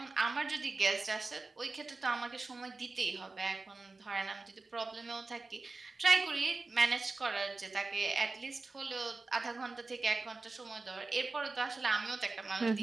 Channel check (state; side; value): quieter; left; 3.6 dB